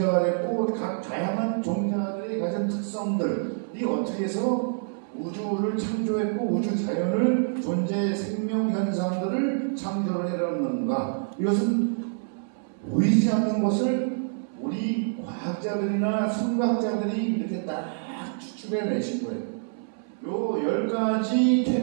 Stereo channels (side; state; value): left; silent; 60 dB below the other